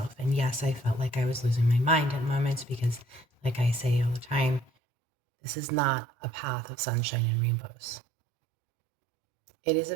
And yes, I felt like I was losing my mind at moments because, like I say all the time, this is not a path of sunshine and rainbows. It is a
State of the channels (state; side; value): drops out; left; at 4.7 s